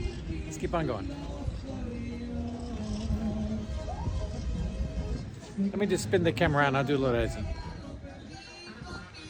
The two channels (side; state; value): both; identical; correlation 1.00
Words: Let's keep on going. Let me just spin the camera around. I'll do a little editing.